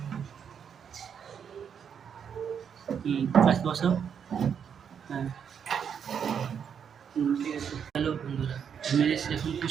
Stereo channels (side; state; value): left; quieter; 7.6 dB